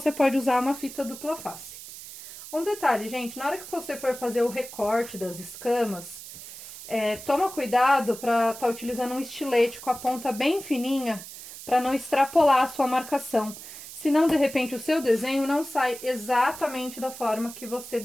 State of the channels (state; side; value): noise; right; hiss, 13 dB below the sound